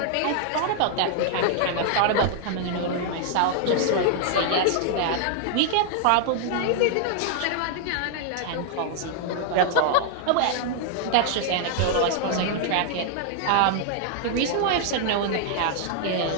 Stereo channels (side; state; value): both; different; correlation 0.00